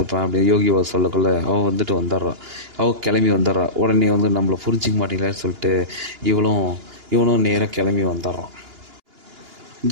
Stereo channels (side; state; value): left; late; 2.9 ms